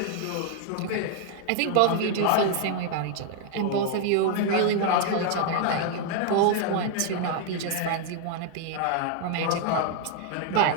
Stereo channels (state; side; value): different; both; correlation 0.00